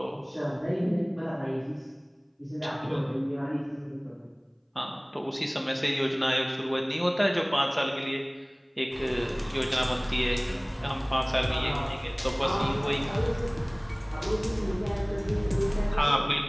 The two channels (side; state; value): both; identical; correlation 1.00